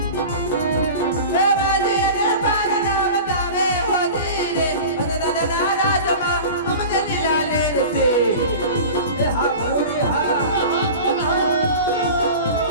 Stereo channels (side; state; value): both; inverted; correlation -0.34